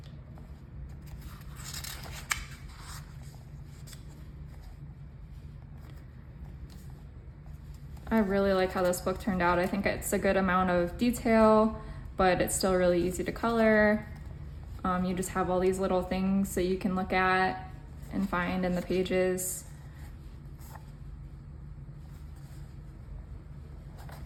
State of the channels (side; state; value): both; identical; correlation 1.00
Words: I really like how this book turned out. I think it's a good amount of detail, but it's still really easy to color. You just have all these little things that you can look at and find in the pages.